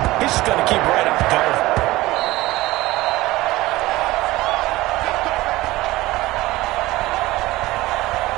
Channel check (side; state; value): left; quieter; 18.6 dB